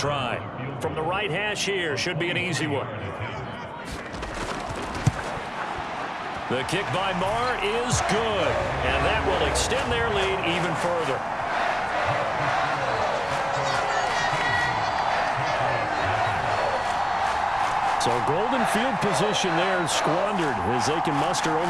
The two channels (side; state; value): both; identical; correlation 1.00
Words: From the right hash here, should be an easy one. The kick by Maher is good, and that will extend their lead even further. So golden field position there squandered as they can muster